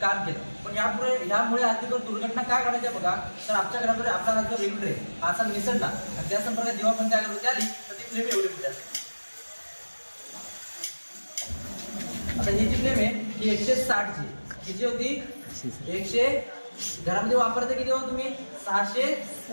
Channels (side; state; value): both; inverted; correlation -1.00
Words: केलं. पण ह्यामुळे अधिक दुर्घटना काय घडायच्या बघा, तर आमच्या घरामध्ये आपला हा जो रेग्युलर आहे असा निसटला आणि त्या संपर्कात जेव्हा पण त्या घरामध्ये आली तर ती फ्लेम एवढी मोठी असते. आता ही जी फ्लेम आहे ही 160 ची किती होती? 100. घरामध्ये वापरते किती हो तुम्ही? 600.